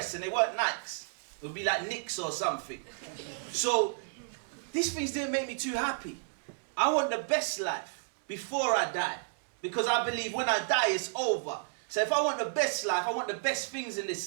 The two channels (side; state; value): left; silent; digital silence